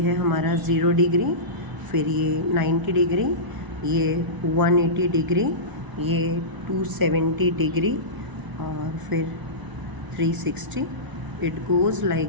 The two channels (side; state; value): left; late; 1.0 ms